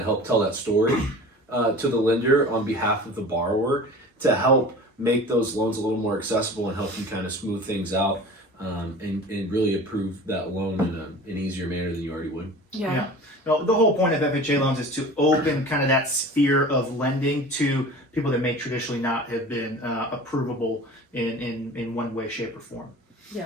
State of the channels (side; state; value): both; normal; correlation 0.39